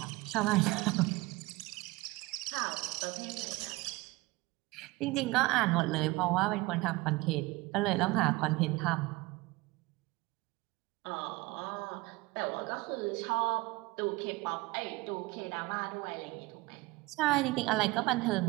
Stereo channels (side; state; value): left; quieter; 21.8 dB